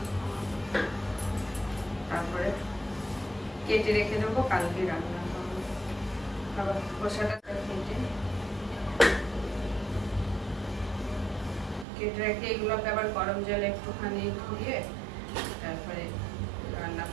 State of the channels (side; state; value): left; drops out; at 11.9 s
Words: তারপরে কেটে রেখে দেবো, কালকে রান্না করবো। আবার খোসাটা কেটে রেখে এগুলোকে আবার গরম জলে একটুখানি ধুয়ে তারপরে রান্না